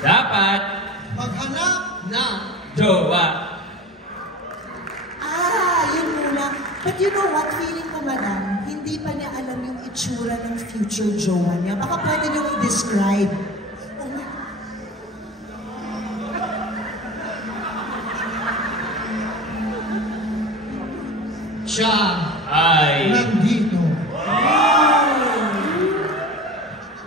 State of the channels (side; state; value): both; normal; correlation 0.33